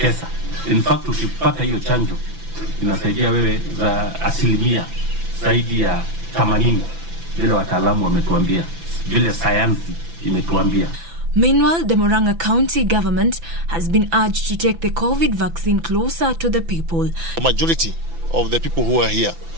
In fact, ukipata hiyo chanjo inasaidia wewe za asilimia zaidi ya 80 vile wataalamu wametuambia, vile sayansi imetuambia. Meanwhile, the Muranga County government has been urged to take the COVID vaccine closer to the people. The majority of the people who are here,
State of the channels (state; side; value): late; left; 6.0 ms